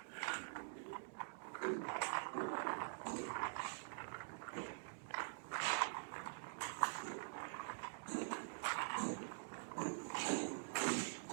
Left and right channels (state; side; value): silent; left; digital silence